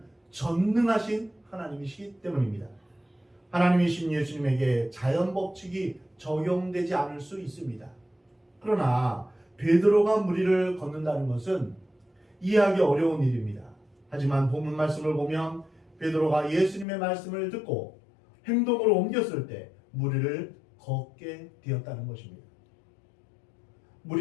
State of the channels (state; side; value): drops out; right; at 16.9 s